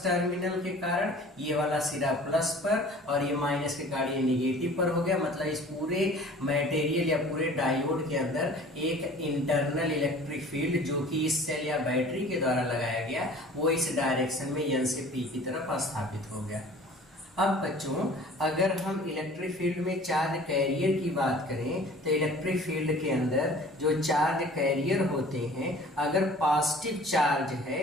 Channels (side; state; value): both; normal; correlation 0.47